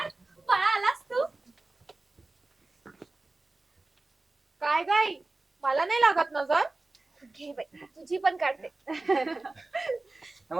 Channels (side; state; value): left; quieter; 3.1 dB